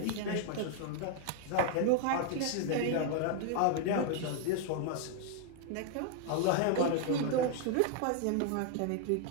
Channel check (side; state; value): both; different; correlation 0.00